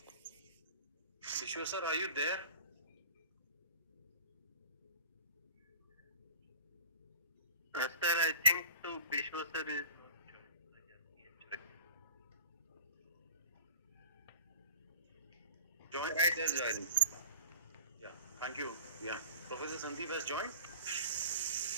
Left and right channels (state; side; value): inverted; both; correlation -0.40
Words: Vishwa sir, are you there? Sir, I think so. Vishwa sir is Joined? Right, there's joining. Yeah, thank you. Yeah, Professor Sandeep has joined.